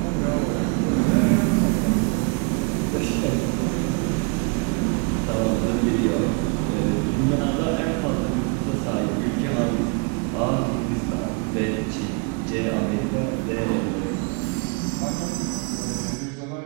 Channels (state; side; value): quieter; left; 30.2 dB